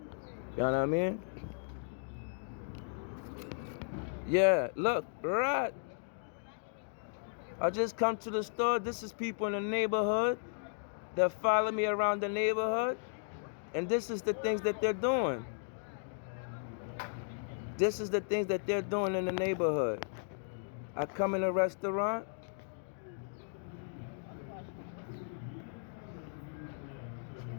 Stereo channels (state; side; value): silent; right; digital silence